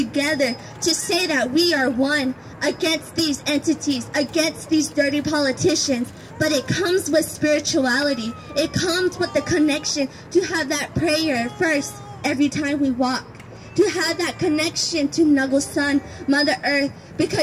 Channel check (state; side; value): identical; both; correlation 1.00